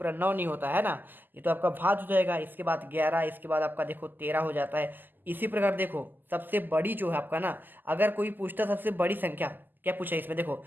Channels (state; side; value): late; left; 0.089 ms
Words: 9 नहीं होता है ना, ये तो आपका भाज्य हो जाएगा। इसके बाद 11, इसके बाद आपका देखो 13 हो जाता है। इसी प्रकार देखो सबसे बड़ी जो है आपका ना, अगर कोई पूछता सबसे बड़ी संख्या, क्या पूछा है इसमें, देखो